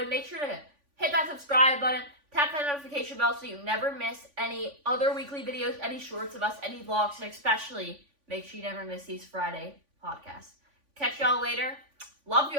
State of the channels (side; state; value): left; late; 3.5 ms